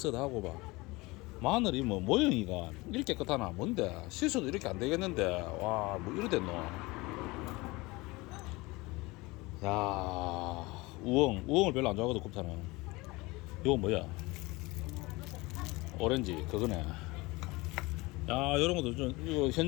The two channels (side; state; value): right; quieter; 22.8 dB